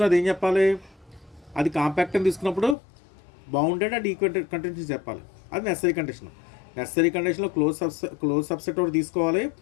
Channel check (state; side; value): drops out; right; at 2.8 s